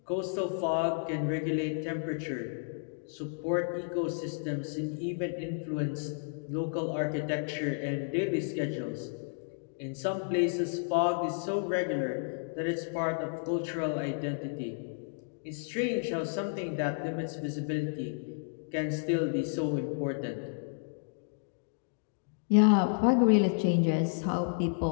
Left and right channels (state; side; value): silent; right; digital silence